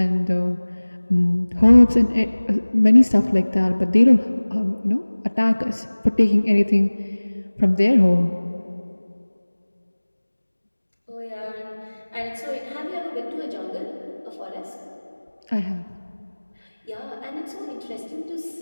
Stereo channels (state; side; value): inverted; both; correlation -1.00